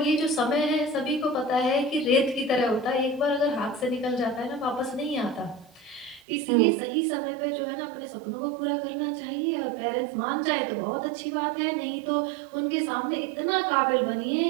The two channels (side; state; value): left; drops out; at 6.2 s